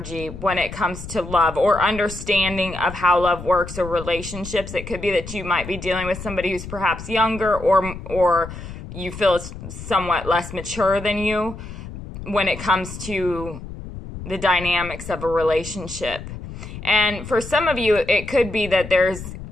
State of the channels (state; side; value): noise; left; rumble, 11 dB below the sound